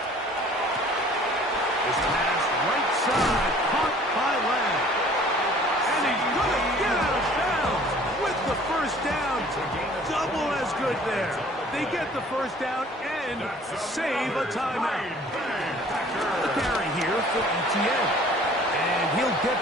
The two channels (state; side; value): normal; both; correlation 0.52